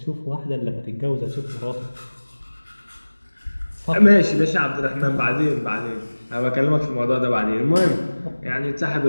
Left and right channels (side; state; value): both; inverted; correlation -1.00